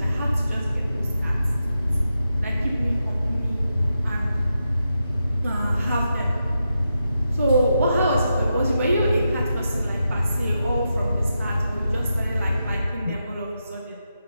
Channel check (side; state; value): both; inverted; correlation -0.87